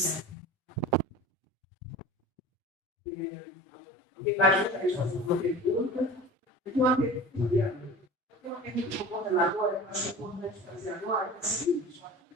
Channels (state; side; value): normal; both; correlation 0.37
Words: Alguém mais gostaria de fazer uma pergunta? Eu tenho uma pergunta para o coordenador, eu acho que é importante fazer agora, é o seguinte: